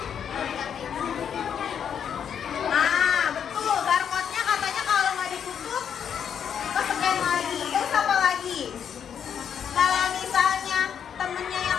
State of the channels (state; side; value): quieter; right; 8.1 dB